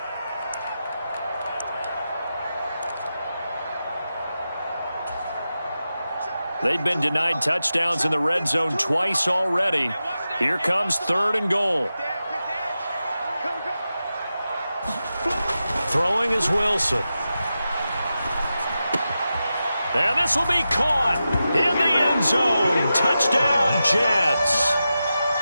They've been denied touchdowns in the red zone twice already. Here comes 3rd and goal. Throwing is Wilson. And this will be caught in the end zone. Touchdown, Jets.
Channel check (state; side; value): inverted; both; correlation -0.91